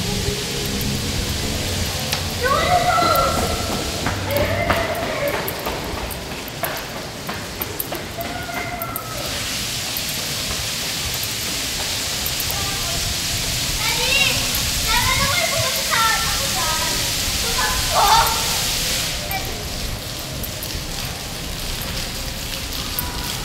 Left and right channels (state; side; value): identical; both; correlation 1.00